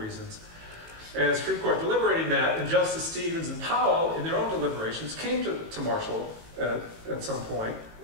And the Supreme Court deliberating that, and Justice Stevens and Powell, in their own deliberations, came to Marshall at some point,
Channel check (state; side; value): late; left; 18 ms